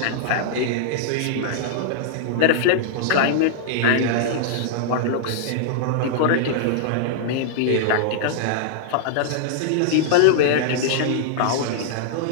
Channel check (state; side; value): different; both; correlation -0.01